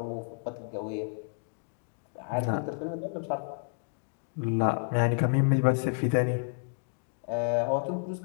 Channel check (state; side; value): silent; right; digital silence